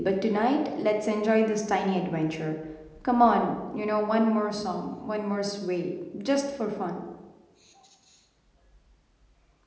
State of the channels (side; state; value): both; identical; correlation 1.00